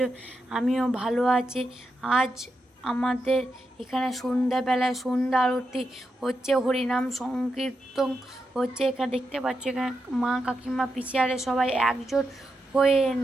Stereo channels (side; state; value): both; normal; correlation 0.86